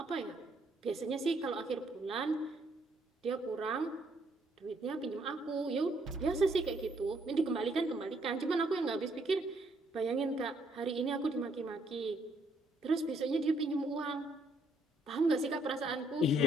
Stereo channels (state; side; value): normal; both; correlation 0.70